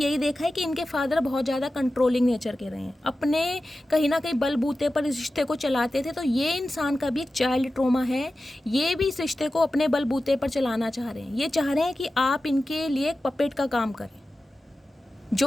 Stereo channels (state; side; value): normal; both; correlation 0.94